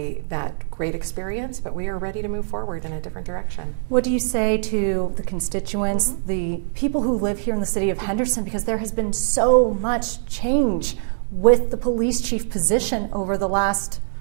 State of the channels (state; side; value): silent; left; 64 dB below the other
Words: great experience, but we are ready to move forward in a different direction. What do you say to the constituents, the people who live here in the city of Henderson, because there has been so much change with the police chief position over the last,